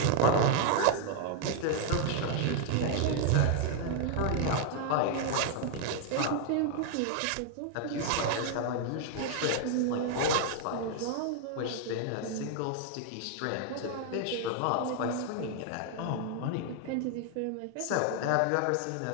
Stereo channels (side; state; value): both; different; correlation 0.00